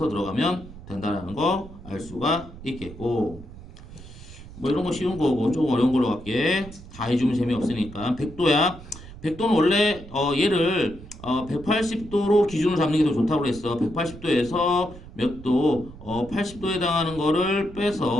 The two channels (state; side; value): noise; right; rumble, 16 dB below the sound